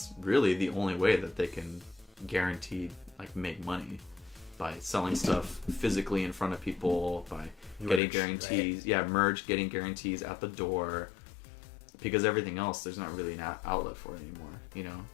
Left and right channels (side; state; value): right; drops out; at 8.0 s